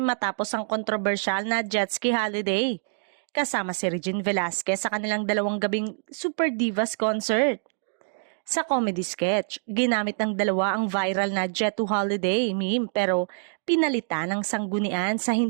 matapos ang kontrobersyal na jet ski holiday. Kasama si Regine Velasquez sa kanilang dalawang gabing Super Divas concert. Sa comedy sketch, ginamit ng dalawa ang viral na Jet to Holiday meme pero pinalitan ng sanggunian sa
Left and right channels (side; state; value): left; silent; digital silence